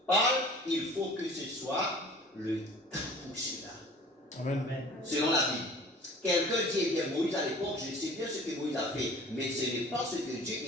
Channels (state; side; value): normal; both; correlation 0.46